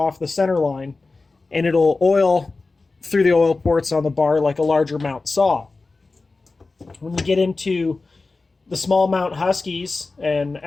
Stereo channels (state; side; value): quieter; right; 3.7 dB